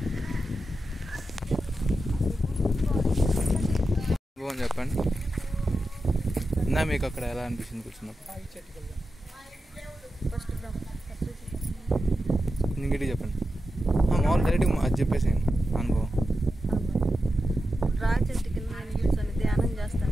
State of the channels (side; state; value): both; normal; correlation 0.90